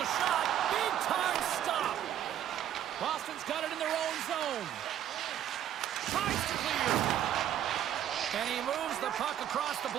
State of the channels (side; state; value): left; quieter; 10.7 dB